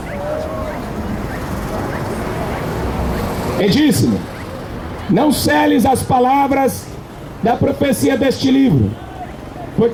E disse-me: não celes as palavras da profecia deste livro,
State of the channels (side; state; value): both; identical; correlation 1.00